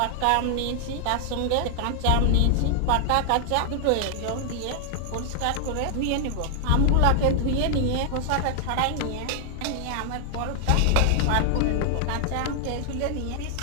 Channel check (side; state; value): both; different; correlation 0.00